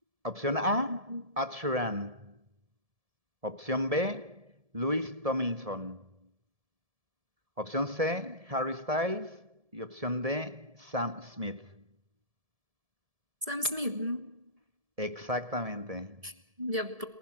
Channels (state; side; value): late; left; 1.7 ms